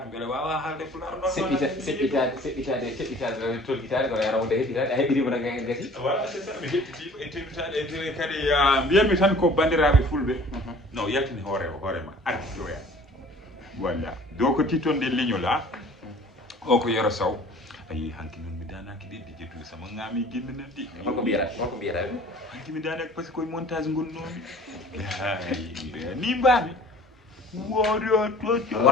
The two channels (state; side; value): normal; both; correlation 0.49